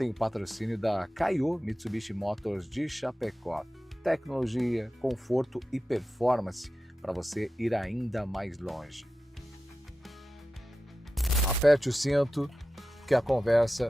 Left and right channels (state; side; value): normal; both; correlation 0.93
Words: o patrocínio da Kaiô Mitsubishi Motors de Chapecó. Tecnologia, conforto e performance para você ir ainda mais longe. Aperte o cinto que a